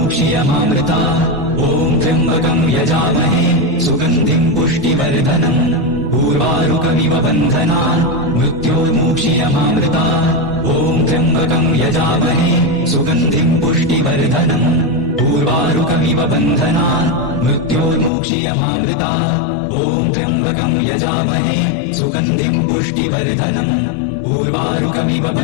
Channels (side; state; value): right; drops out; at 18.1 s